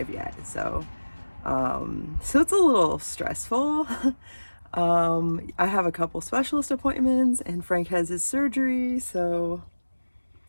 yet. So it's a little stressful. I have a couple specialist appointments and Frank has his surgery, so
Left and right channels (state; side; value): inverted; both; correlation -1.00